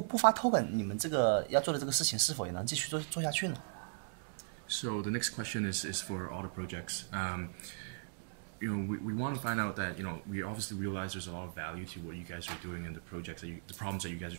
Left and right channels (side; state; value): left; silent; digital silence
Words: 不发 token， 你们这个要做的这个事情是否也能继续做下去呢？ So the next question is for all the projects. We want to find out that we obviously realize there's a lot of value to what you guys are doing and the projects the problems that you guys